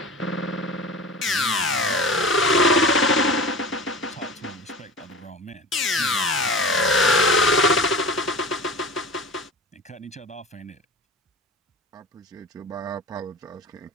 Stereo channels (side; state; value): both; normal; correlation 0.35